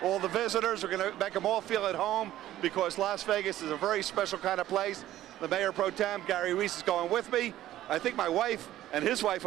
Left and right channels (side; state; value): left; quieter; 13.7 dB